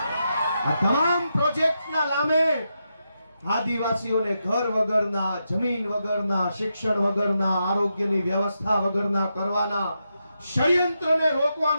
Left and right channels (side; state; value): both; inverted; correlation -0.85